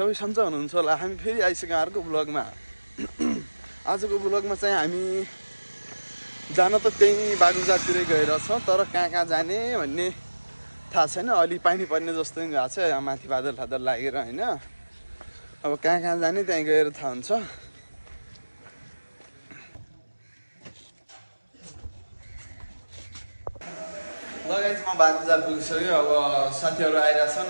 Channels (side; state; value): both; inverted; correlation -1.00